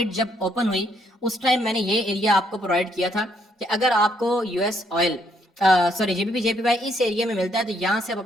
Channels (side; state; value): both; normal; correlation 0.71